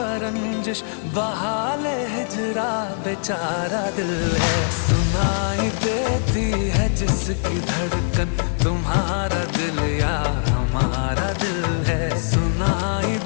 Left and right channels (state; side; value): silent; right; digital silence